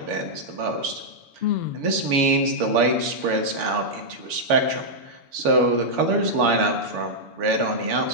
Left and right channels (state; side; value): late; left; 7.0 ms